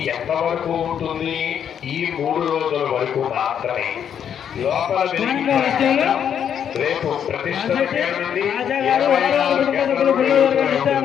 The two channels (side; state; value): right; quieter; 8.6 dB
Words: ఎంతవరకు ఉంటుంది? ఈ 3 రోజుల వరకు మాత్రమే. లోపల రేపు ప్రతిష్ట